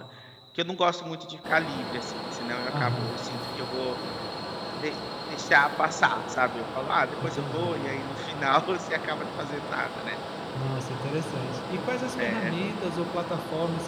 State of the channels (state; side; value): identical; both; correlation 1.00